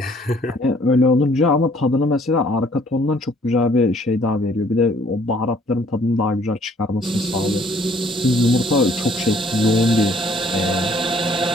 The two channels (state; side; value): normal; both; correlation 0.61